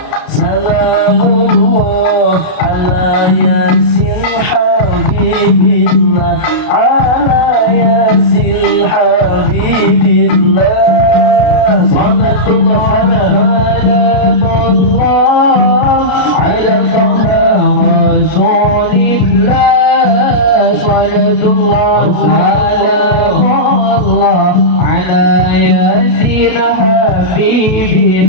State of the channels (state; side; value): late; right; 32 ms